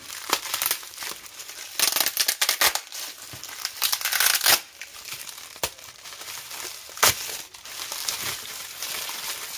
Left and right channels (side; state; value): both; identical; correlation 1.00